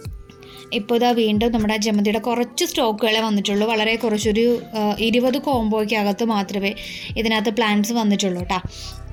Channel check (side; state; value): both; identical; correlation 1.00